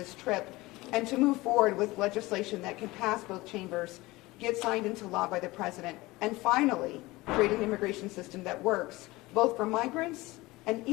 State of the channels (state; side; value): quieter; right; 20.5 dB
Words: trip, and to move forward with legislation that can pass both chambers, get signed into law by the president, and finally create an immigration system that works, both for migrants and